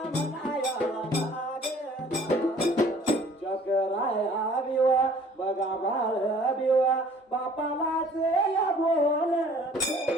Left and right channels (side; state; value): both; normal; correlation 0.54